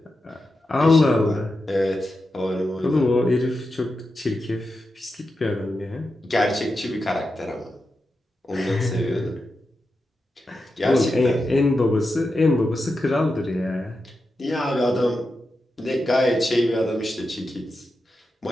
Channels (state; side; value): normal; both; correlation 0.89